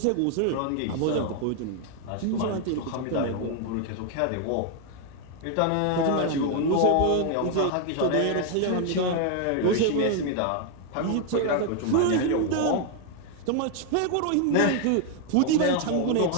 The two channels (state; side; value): different; both; correlation 0.00